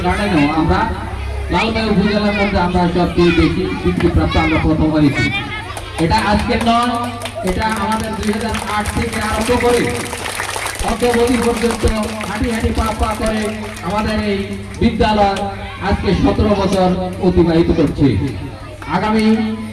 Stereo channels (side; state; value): both; identical; correlation 1.00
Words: গার্ডেনেও আমরা লালমাই উপজেলার মধ্যে আমরা সবচেয়ে বেশি স্বীকৃতিপ্রাপ্ত আমরা প্রথম হয়েছি। এটা আজকের নয়, এটা আমাদের 2008 থেকে আরম্ভ করে অদ্যাবধি পর্যন্ত হাঁটি হাঁটি পা পা করে আমাদের এই বিদ্যালয় আজকে 17 বছর অতিবাহিত করছে। আগামী